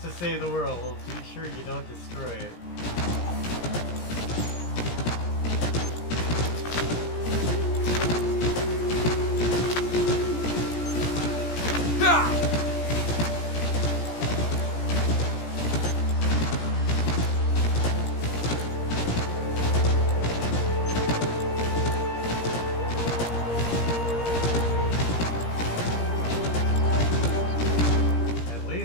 to save the world, be sure you don't destroy it. At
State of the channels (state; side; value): late; right; 17 ms